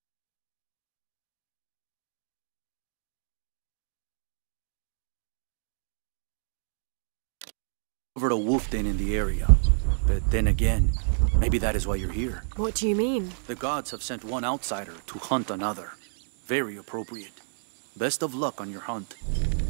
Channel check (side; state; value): left; silent; digital silence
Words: over a wolf den in the area. But then again, maybe that is why you're here. What do you mean? The gods have sent one outsider to hunt another. Very appropriate. Best of luck on your hunt.